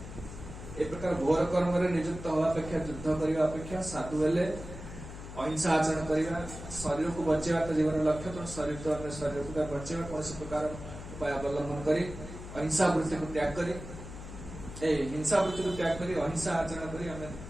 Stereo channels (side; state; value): left; noise; hum, 12 dB below the sound